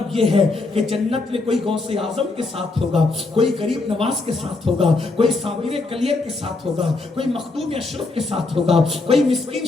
یہ ہے کہ جنت میں کوئی غوث اعظم کے ساتھ ہوگا، کوئی غریب نواز کے ساتھ ہوگا، کوئی صابر کلیر کے ساتھ ہوگا، کوئی مخدوم اشرف کے ساتھ ہوگا، کوئی مسکین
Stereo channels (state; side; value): quieter; right; 3.5 dB